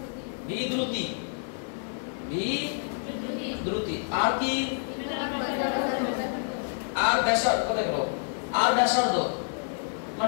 ভি দ্রুতি, ভি দ্রুতি। আর কি? আর ব্যাসার্ধ কত হলো? আর ব্যাসার্ধ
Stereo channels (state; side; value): silent; right; digital silence